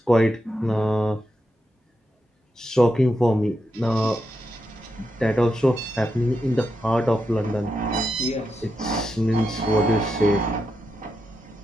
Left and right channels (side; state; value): both; normal; correlation 0.86